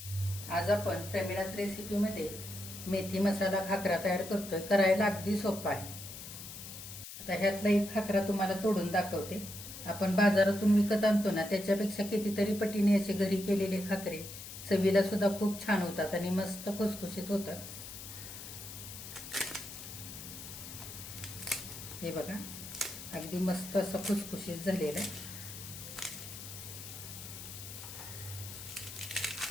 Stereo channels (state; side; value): noise; left; hiss, 11 dB below the sound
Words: आज आपण प्रमिलास रेसिपीमध्ये मेथी मसाला खाकरा तयार करतोय. करायला अगदी सोपा आहे. आता ह्यातला एक खाकरा तुम्हाला तोडून दाखवते. आपण बाजारातून विकत आणतो ना, त्याच्यापेक्षा कितीतरी पटीने असे घरी केलेले खाकरे चवीला सुद्धा खूप छान होतात आणि मस्त खुसखुशीत होतात. हे बघा, अगदी मस्त असं खुसखुशीत झालेलं आहे.